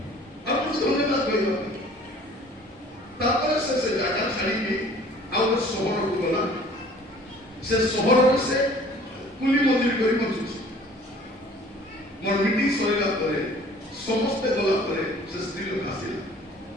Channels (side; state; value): both; normal; correlation 0.51